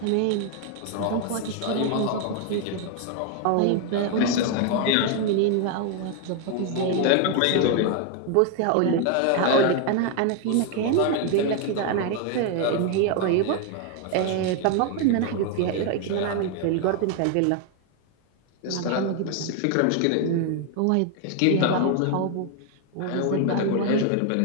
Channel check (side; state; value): both; different; correlation 0.01